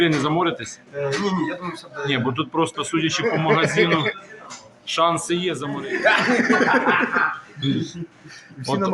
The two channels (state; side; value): identical; both; correlation 1.00